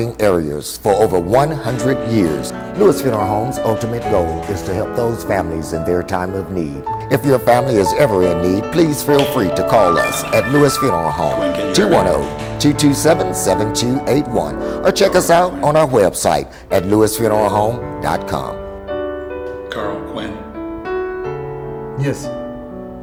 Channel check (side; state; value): both; identical; correlation 1.00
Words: areas for over 100 years. Lewis Funeral Home's ultimate goal is to help those families in their time of need. If your family is ever in need, please feel free to call us at Lewis Funeral Home, 210-227-7281, or check us out on our website at lewisfuneralhome.com. Carl, Quinn. Yes.